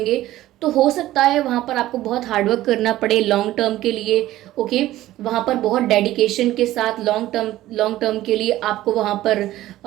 तो हो सकता है वहाँ पर आपको बहुत हार्डवर्क करना पड़े लॉन्ग टर्म के लिए। ओके, वहाँ पर बहुत डेडिकेशन के साथ लॉन्ग टर्म के लिए आपको वहाँ पर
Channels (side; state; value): left; quieter; 15.1 dB